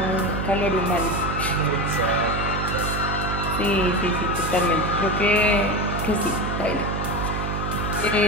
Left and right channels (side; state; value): right; noise; hum, 3 dB below the sound